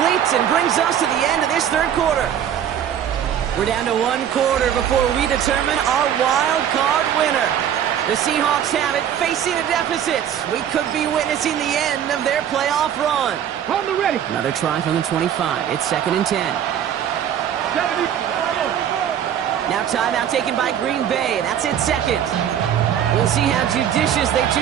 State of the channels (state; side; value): quieter; left; 9.6 dB